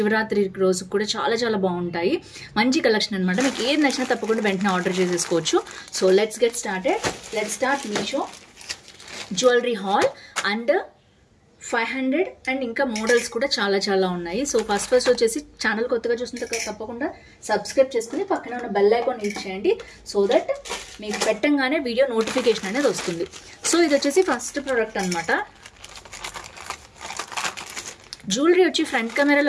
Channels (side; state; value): both; identical; correlation 1.00